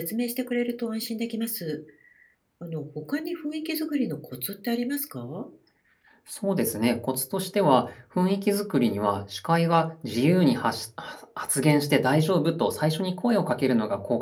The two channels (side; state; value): both; identical; correlation 1.00